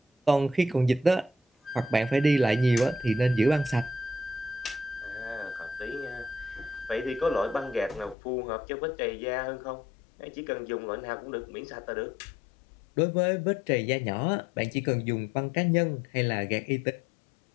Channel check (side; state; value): right; drops out; at 8.2 s